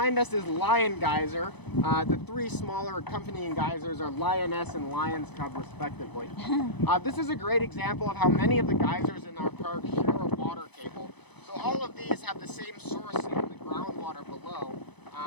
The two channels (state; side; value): late; right; 0.99 ms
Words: us is Lion Geyser. The three smaller accompanying geysers are Lioness and Lion's Cub, respectively. This is a great example of how many of the geysers in our park share a water table. So all of these have the same source in the groundwater below,